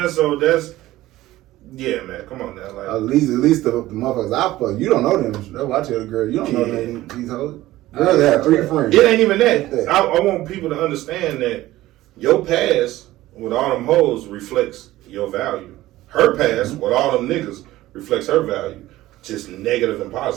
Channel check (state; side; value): quieter; left; 16.2 dB